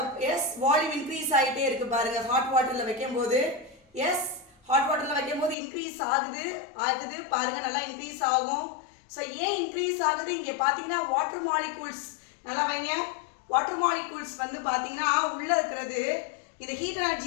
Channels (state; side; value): drops out; right; at 5.6 s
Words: வால்யூம் இன்க்ரீஸ் ஆகிட்டே இருக்கு. பாருங்க, ஹாட் வாட்டர்ல வைக்கும் போது ஹாட் வாட்டர்ல வைக்கும் போது இன்க்ரீஸ் ஆகுது. பாருங்க, நல்லா இன்க்ரீஸ் ஆகும். ஸோ ஏன் இன்க்ரீஸ் ஆகுது? இங்கே பார்த்தீங்கன்னா வாட்டர் மாலிகூல்ஸ், நல்லா வைங்க. வாட்டர் மாலிகூல்ஸ் வந்து பார்த்தீங்கன்னா உள்ள இருக்கிறது இந்த ஹீட்